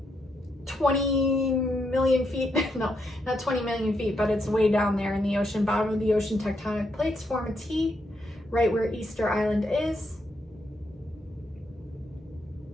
20 million feet? No, not 20 million feet, but it's way down there in the ocean, bottom of the ocean. Tectonic plates form a T right where Easter Island is.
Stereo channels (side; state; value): both; normal; correlation 0.79